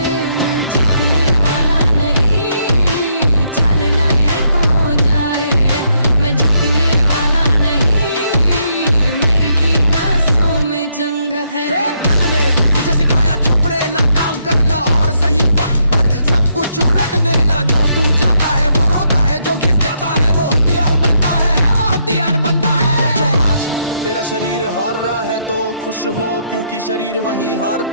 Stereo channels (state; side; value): inverted; both; correlation -0.75